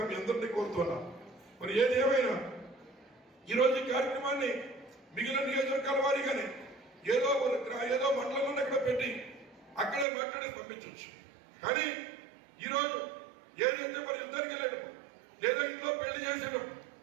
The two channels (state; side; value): drops out; left; at 10.1 s